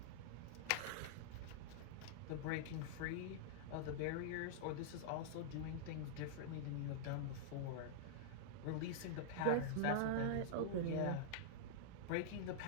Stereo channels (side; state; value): both; different; correlation -0.02